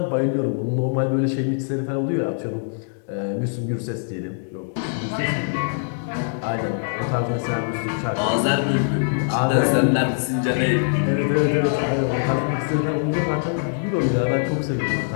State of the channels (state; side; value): silent; right; digital silence